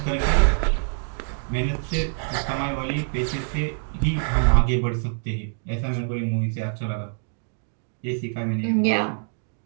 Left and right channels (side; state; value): left; silent; digital silence